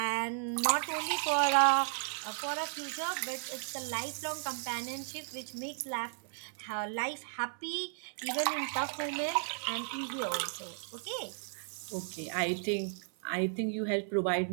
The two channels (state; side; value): silent; left; 55 dB below the other